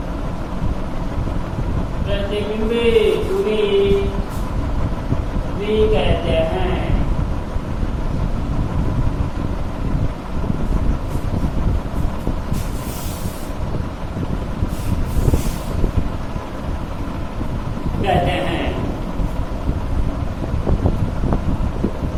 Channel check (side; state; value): both; identical; correlation 1.00